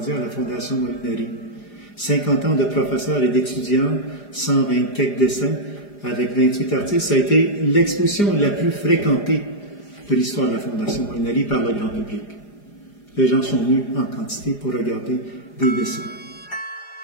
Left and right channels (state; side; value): late; right; 4.9 ms